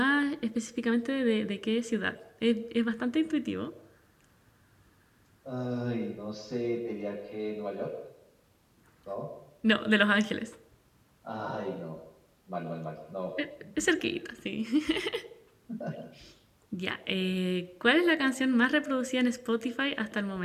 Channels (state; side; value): identical; both; correlation 1.00